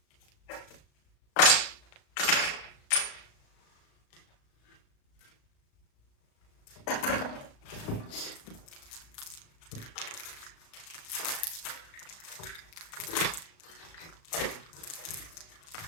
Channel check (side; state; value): right; late; 36 ms